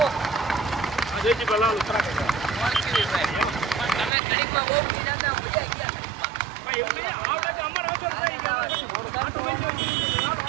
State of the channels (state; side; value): drops out; left; at 4.1 s